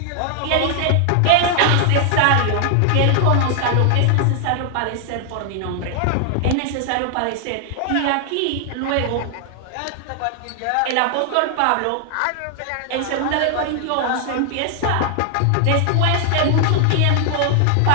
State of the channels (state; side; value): different; both; correlation 0.00